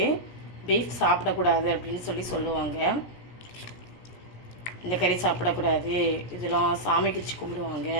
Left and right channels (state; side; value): late; right; 17 ms